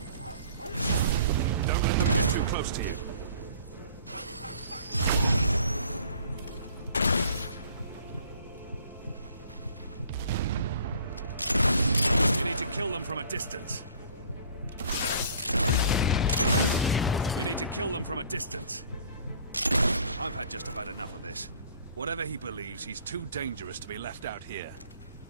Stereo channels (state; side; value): inverted; both; correlation -0.53